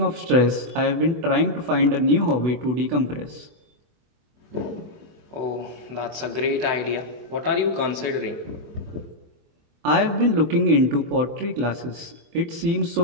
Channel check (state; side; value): late; left; 24 ms